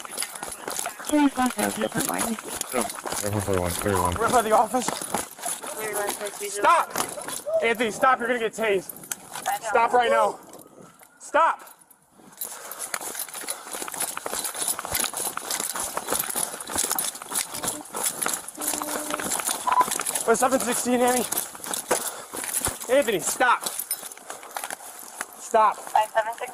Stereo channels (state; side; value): identical; both; correlation 1.00